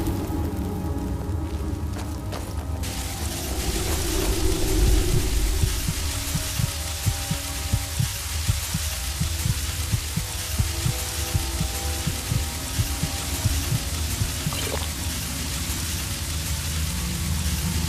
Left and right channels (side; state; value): both; identical; correlation 1.00